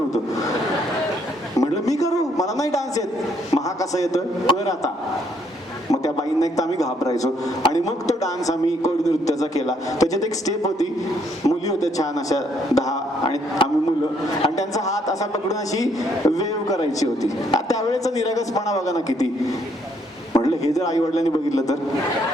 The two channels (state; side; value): normal; both; correlation 0.69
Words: म्हटलं मी करू, मला नाही डान्स येत. मग हा कसा येतोय, कर आता. मग त्या बाईंना एक तर आम्ही घाबरायचो आणि मग तो डान्स आम्ही कोळी नृत्याचा केला. त्याच्यात एक स्टेप होती, मुली होत्या छान अशा 10 आणि आम्ही मुलं, आणि त्यांचा हात असा पकडून अशी वेव करायची होती. त्यावेळेचा निरागसपणा बघा ना किती. म्हटलं हे जर आई वडिलांनी बघितलं तर,